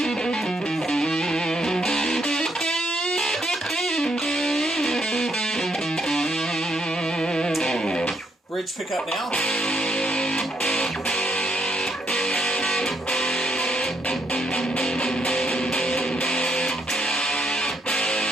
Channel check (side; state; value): both; normal; correlation 0.75